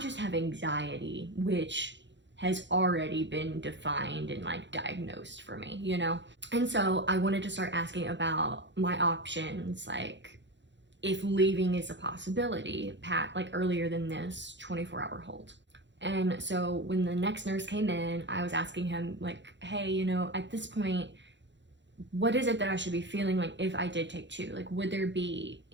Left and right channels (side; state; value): left; late; 0.53 ms